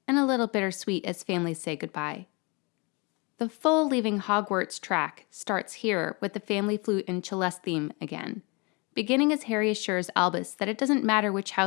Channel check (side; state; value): right; quieter; 29.5 dB